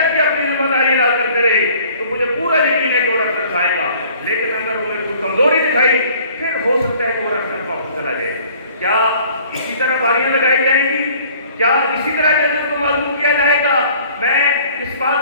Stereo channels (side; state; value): both; inverted; correlation -0.54